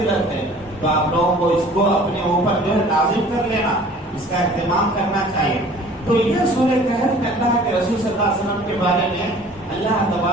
ہے. تو آپ لوگوں کو اس کو اپنے اوپر جو ہے لازم کر لینا, اس کا اہتمام کرنا چاہیے. تو یہ سورہ کہف میں اللہ کے رسول صلی اللہ علیہ وسلم کے بارے میں اللہ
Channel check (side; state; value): both; normal; correlation 0.49